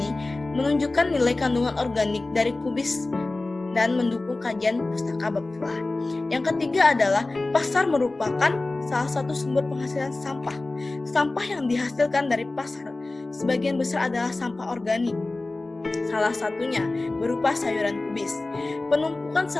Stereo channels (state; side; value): quieter; right; 3.1 dB